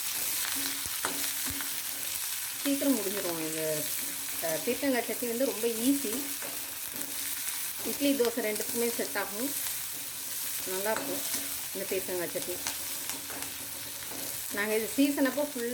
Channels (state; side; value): identical; both; correlation 1.00